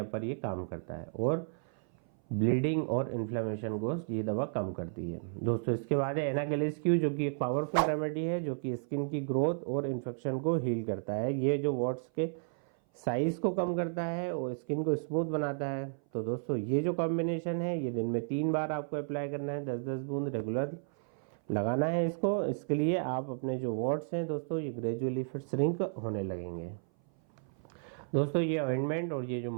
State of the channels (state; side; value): silent; left; 56 dB below the other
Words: पर ये काम करता है, और ब्लीडिंग और इन्फ्लेमेशन को ये दवा कम करती है। दोस्तों इसके बाद है एनागेलिस क्यू, जो कि एक पावरफुल रेमेडी है जो कि स्किन की ग्रोथ और इन्फेक्शन को हील करता है। ये जो वॉट्स के साइज़ को कम करता है और स्किन को स्मूथ बनाता है। तो दोस्तों ये जो कॉम्बिनेशन है ये दिन में 3 बार आपको अप्लाई करना है, 10-10 बूंद रेगुलर लगाना है इसको। इसके लिए आप अपने जो वॉट्स हैं दोस्तों ये ग्रेजुअली फिर श्रिंक होने लगेंगे। दोस्तों ये ऑइंटमेंट और ये जो